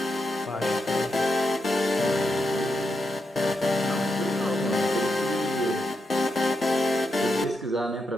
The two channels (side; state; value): both; normal; correlation 0.84